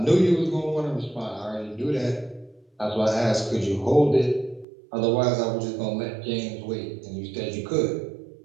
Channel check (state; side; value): drops out; left; at 4.7 s